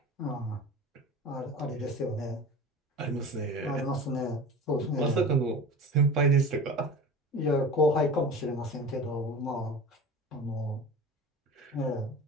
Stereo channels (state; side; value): normal; both; correlation 0.35